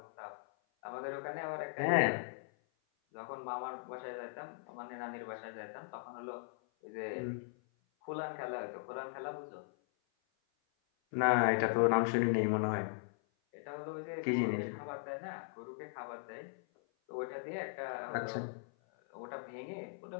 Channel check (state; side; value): silent; right; 52 dB below the other